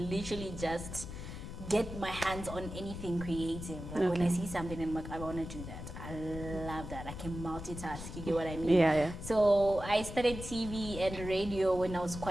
just get my hands on anything creative. Like when I see something and I'm like, I want to do that. I love that. I can multitask. You get what I mean? Yeah. So I studied TV and radio when I was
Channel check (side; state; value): left; noise; rumble, 9 dB below the sound